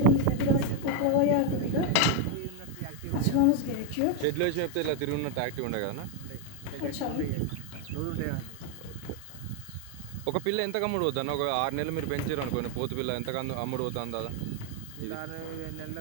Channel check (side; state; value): both; different; correlation 0.01